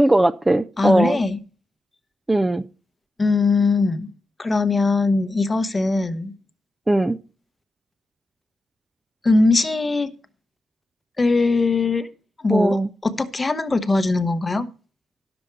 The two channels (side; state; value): both; normal; correlation 0.91